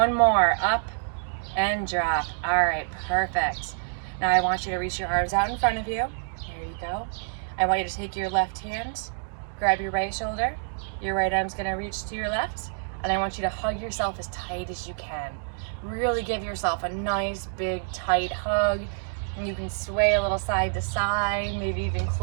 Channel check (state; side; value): silent; left; digital silence